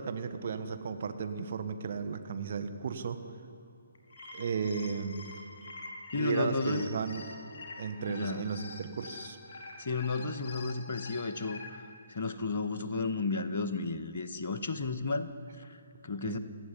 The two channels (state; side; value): inverted; both; correlation -0.63